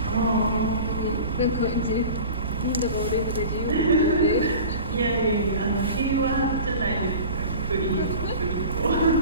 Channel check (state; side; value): inverted; both; correlation -0.38